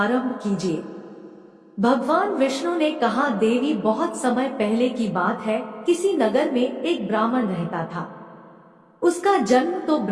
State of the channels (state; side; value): identical; both; correlation 1.00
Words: कीजिए। भगवान विष्णु ने कहा, देवी, बहुत समय पहले की बात है, किसी नगर में एक ब्राह्मण रहता था। उसका जन्म तो